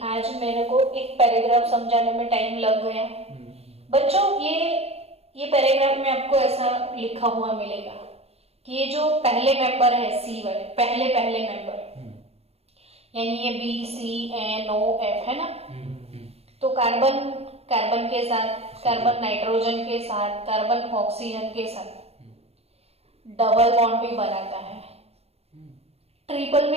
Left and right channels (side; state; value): left; late; 0.29 ms